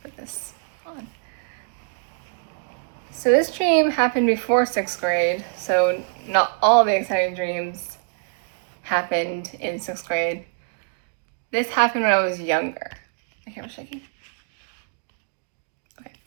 Put this on. So this dream happened before 6th grade, so not all the exciting dreams happened in 6th grade. This happened when I was younger. My camera's shaking. Okay.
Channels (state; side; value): silent; left; digital silence